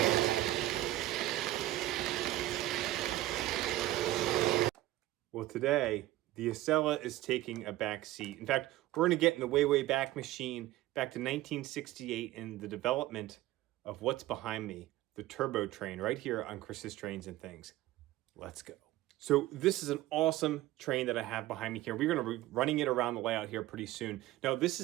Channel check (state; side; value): quieter; left; 15.8 dB